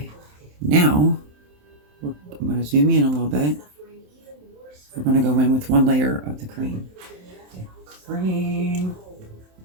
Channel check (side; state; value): left; late; 27 ms